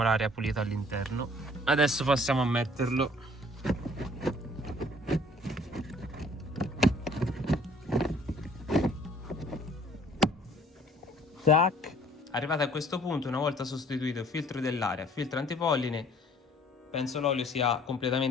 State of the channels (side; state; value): both; normal; correlation 0.56